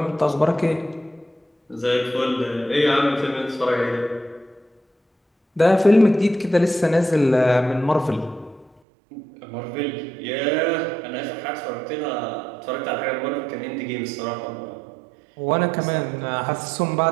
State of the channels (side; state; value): left; drops out; at 8.8 s